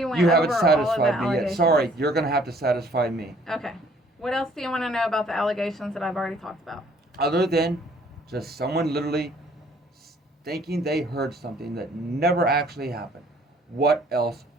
went You over haven't all of the satisfied me yet. allegations. Sorry, you're going to have to satisfy me. Okay. What else do you want to know about the allegations that I've already talked about? Other than just someone literally thinking they heard something that never actually happened. What else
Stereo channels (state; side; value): normal; both; correlation 0.59